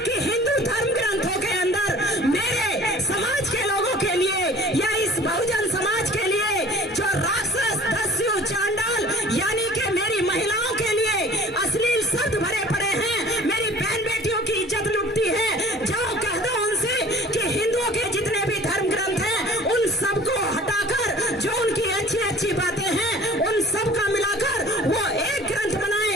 कि हिंदू धर्म ग्रंथों के अंदर मेरे समाज के लोगों के लिए या इस बहुजन समाज के लिए जो राक्षस दस्यु चांडाल यानी कि मेरी महिलाओं के लिए अश्लील शब्द भरे पड़े हैं, मेरी बहन बेटियों की इज्जत लुटती है, जाओ कह दो उनसे कि हिंदुओं के जितने भी धर्म ग्रंथ हैं उन सबको हटाकर जो उनकी अच्छी अच्छी बातें हैं उन सब का मिलाकर वो एक ग्रंथ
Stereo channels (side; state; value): both; normal; correlation 0.47